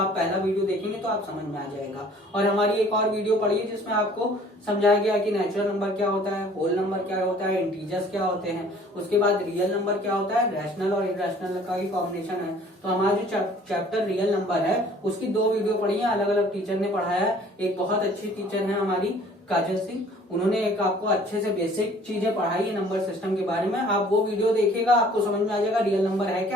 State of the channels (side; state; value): both; normal; correlation 0.54